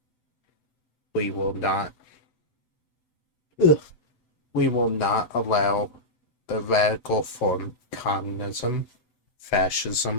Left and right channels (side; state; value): right; late; 7.9 ms